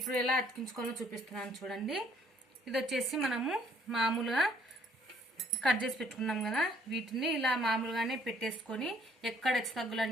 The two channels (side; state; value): both; normal; correlation 0.63